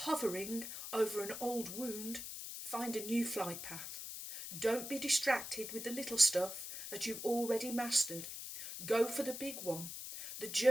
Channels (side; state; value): left; noise; hiss, 8 dB below the sound